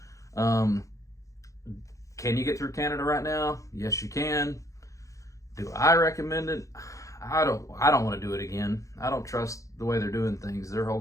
Can you get through Canada right now? Yes, you can. Do I recommend it? I don't want to do it again. I don't trust the way they're doing things. Their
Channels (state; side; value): late; right; 0.15 ms